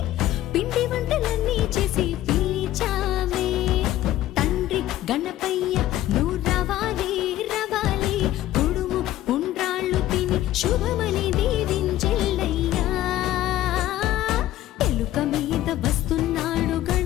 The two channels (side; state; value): right; quieter; 14.1 dB